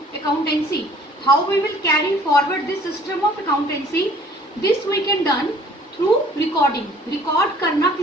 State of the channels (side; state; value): both; normal; correlation 0.54